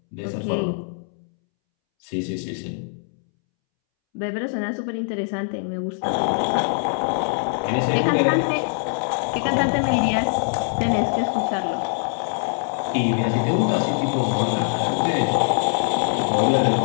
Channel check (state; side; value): silent; right; 64 dB below the other